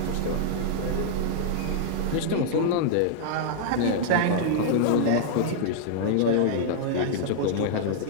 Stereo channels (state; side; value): different; both; correlation -0.01